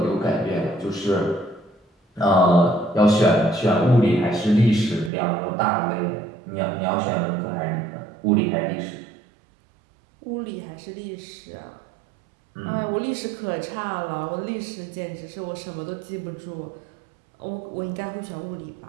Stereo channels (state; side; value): drops out; left; at 5.1 s